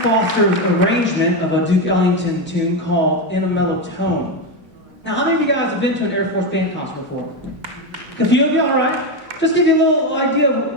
Foster's arrangement of a Duke Ellington tune called In a Mellow Tone. Now, how many of you guys have been to an Air Force band concert before? A few of you, all right. Just give you a little idea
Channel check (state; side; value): normal; both; correlation 0.11